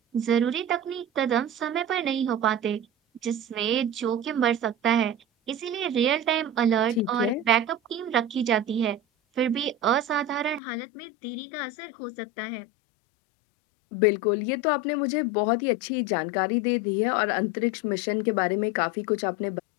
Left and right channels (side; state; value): right; drops out; at 10.6 s